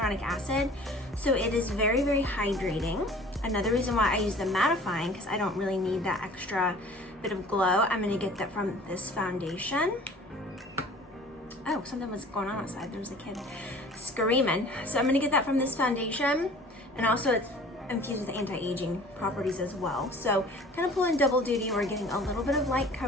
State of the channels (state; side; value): normal; both; correlation 0.47